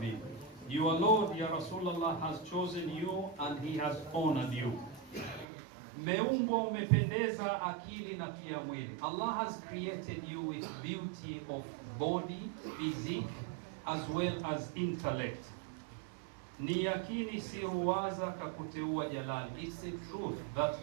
Your Lord, ya Rasulullah, has chosen you and he has honored you. Meumbwa umependeza akili na pia mwili. Allah has created you with beauty of body, physique, as well as intellect. Ni yakini si ruwaza kakuteua jalali. It's a truth that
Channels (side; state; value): left; drops out; at 5.5 s